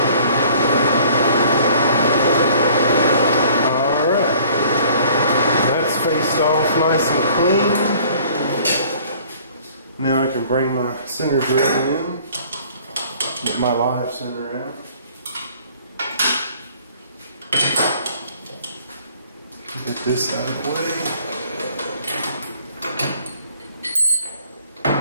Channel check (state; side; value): inverted; both; correlation -0.54